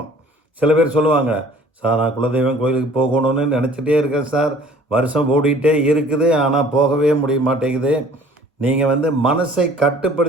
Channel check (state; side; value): normal; both; correlation 0.52